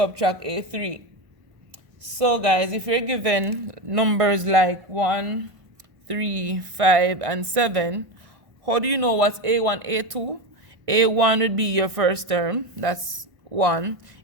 A3. So guys, if you're given numbers like 1, 3, 5, and 7, how do you know what's A1, A2? A1 would be your first term, that's 1.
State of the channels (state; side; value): late; left; 1.6 ms